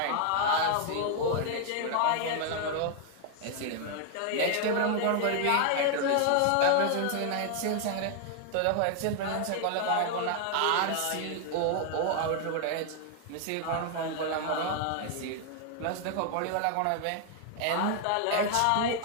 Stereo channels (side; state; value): both; different; correlation 0.00